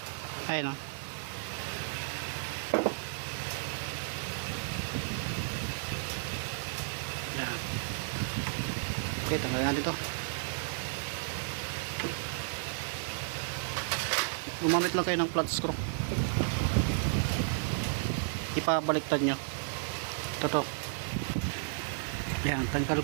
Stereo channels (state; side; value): silent; left; digital silence